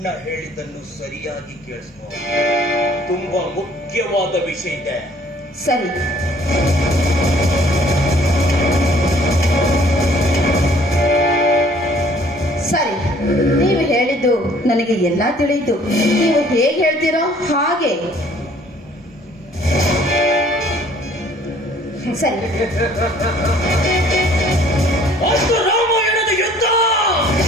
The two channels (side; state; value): both; normal; correlation 0.57